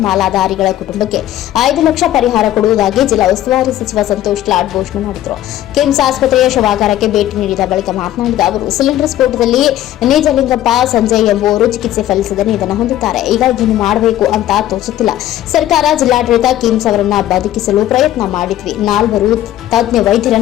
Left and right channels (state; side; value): quieter; right; 13.1 dB